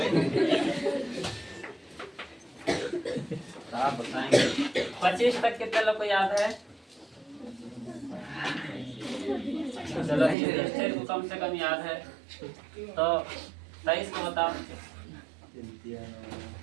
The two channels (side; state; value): left; drops out; at 10.4 s